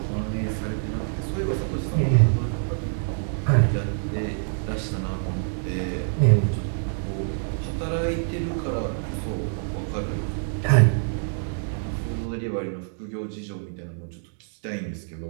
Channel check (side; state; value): left; silent; digital silence